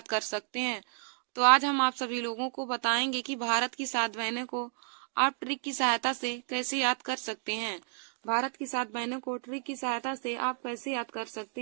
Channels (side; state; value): left; silent; 57 dB below the other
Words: कर सकते हैं। तो आज हम आप सभी लोगों को बताएंगे कि भारत की 7 बहनों को आप ट्रिक की सहायता से कैसे याद कर सकते हैं। भारत की 7 बहनों को ट्रिक की सहायता से आप कैसे याद कर सकते